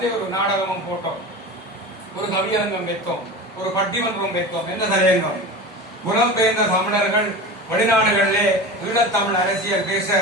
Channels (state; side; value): normal; both; correlation 0.30